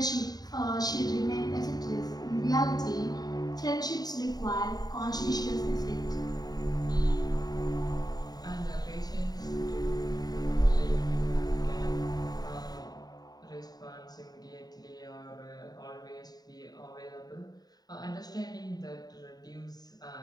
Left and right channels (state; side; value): late; right; 0.19 ms